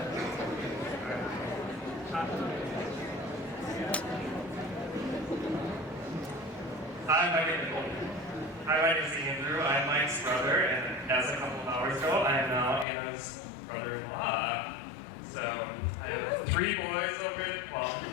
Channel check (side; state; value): right; drops out; at 12.9 s